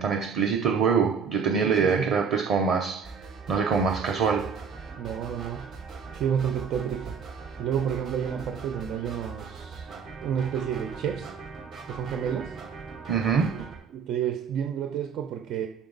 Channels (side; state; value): left; quieter; 6.3 dB